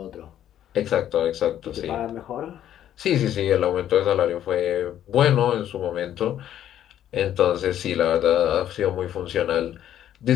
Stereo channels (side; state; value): right; quieter; 11.1 dB